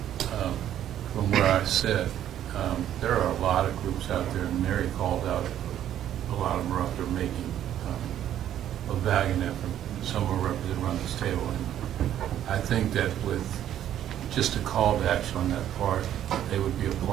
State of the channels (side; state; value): left; quieter; 11.1 dB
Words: from where I sit, there are a lot of groups out there, and Mary called out a lot of them are out there making a valiant effort. Some are represented around this table, and I think that with just a call to action on that part, they would be a